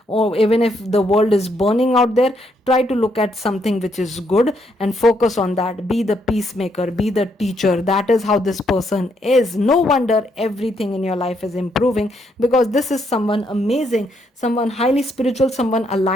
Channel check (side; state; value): both; normal; correlation 0.74